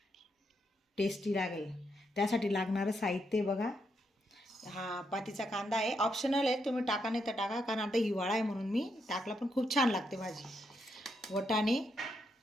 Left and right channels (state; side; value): normal; both; correlation 0.80